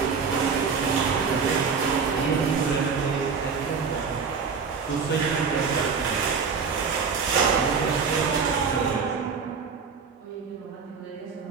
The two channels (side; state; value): left; quieter; 5.5 dB